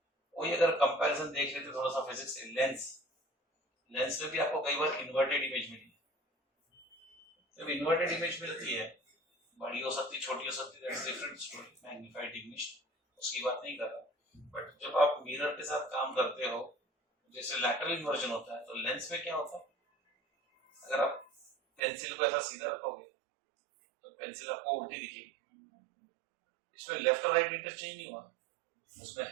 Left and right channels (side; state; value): left; drops out; at 21.8 s